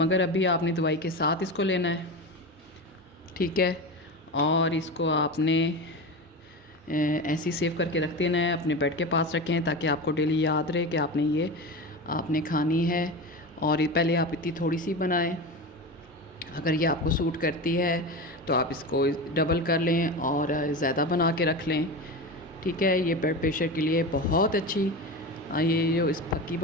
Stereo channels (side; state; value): both; normal; correlation 0.24